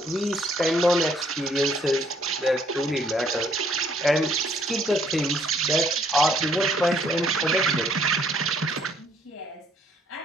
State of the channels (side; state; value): both; normal; correlation 0.65